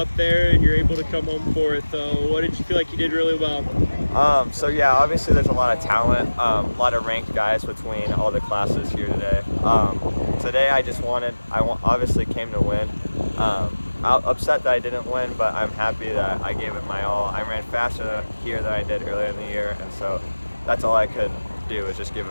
there, and you're able to come home fourth. What did you feel like you did really well? Obviously there's a lot of talent, a lot of ranked guys between all the classes here today. Today I obviously came to win. I'm upset that I didn't win, but I'm happy that I gave it my all. I ran faster here than I did earlier in the year, and so that's all I could do was just give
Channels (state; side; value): inverted; both; correlation -1.00